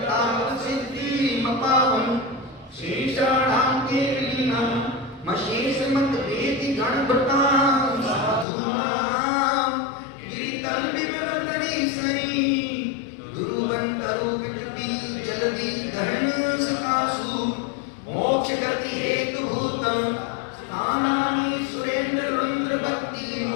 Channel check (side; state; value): right; drops out; at 8.5 s